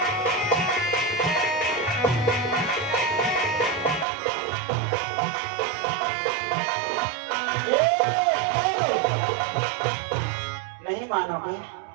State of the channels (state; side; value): drops out; left; at 4.0 s